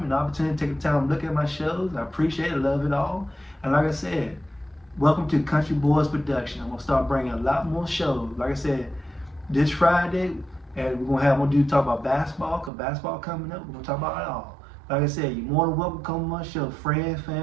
and the opportunity to take the time to look at my shows. I appreciate it, love it all. And like I said, welcome to Country Boys Production. I'm gonna start bringing a lot more shows. Like I said, this Friday, and we're gonna talk about basketball, cause basketball coming up. We're gonna talk about it all. Like I said, you're more than welcome to come on my show. Friends,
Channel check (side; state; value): left; drops out; at 12.7 s